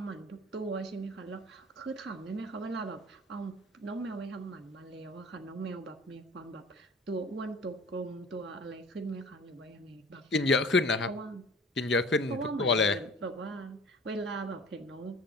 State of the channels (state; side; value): normal; both; correlation 0.44